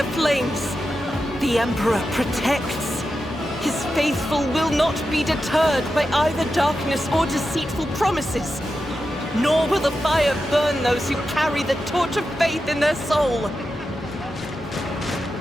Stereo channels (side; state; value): both; normal; correlation 0.90